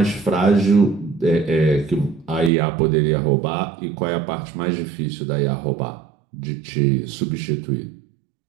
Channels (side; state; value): left; drops out; at 2.5 s